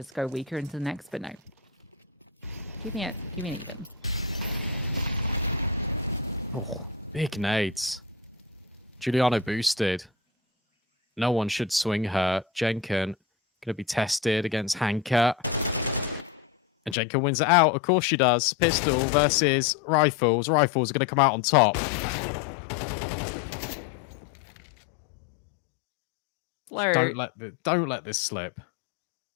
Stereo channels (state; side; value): drops out; right; at 16.9 s